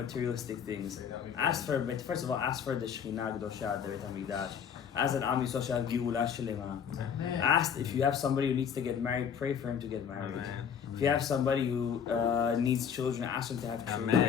things. But first of all, ask for the Shekhinah Kedosha, the Beit HaMikdash. Ask that Am Yisrael shall have Geula Shlema. Ask if you have somebody who needs to get married, pray for him to get married. Amen. If you have somebody who needs children, ask them to have children.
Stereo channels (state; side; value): quieter; right; 7.7 dB